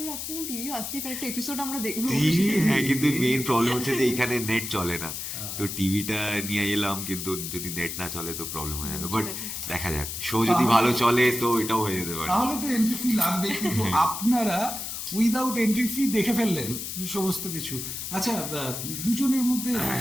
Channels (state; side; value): noise; left; hiss, 6 dB below the sound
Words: আসছে না, টিভিও আসতেই পারে, একটা এপিসোড আমরা দেখবো। টিভি। হ্যাঁ, কিন্তু মেইন প্রবলেম হচ্ছে যে এখানে নেট চলে না, তো টিভিটা নিয়ে এলাম, কিন্তু যদি নেট না চলে তো প্রবলেম হয়ে যাবে। বাট দেখা যাক, শো যদি ভালো চলে তো এটাও হয়ে যেতে পারে। তাহলে তো এন্ট্রি ফি লাগবে, কিন্তু আপনারা উইদাউট এন্ট্রি ফি দেখে ফেললেন সমস্ত কিছু। আচ্ছা, দুজনের মধ্যে